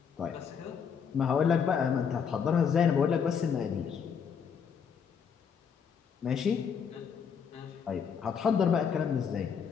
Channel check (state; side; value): quieter; right; 6.9 dB